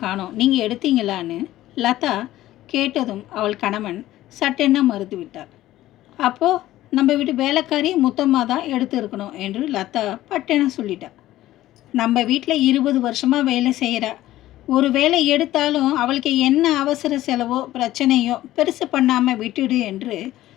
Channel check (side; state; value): right; quieter; 15.0 dB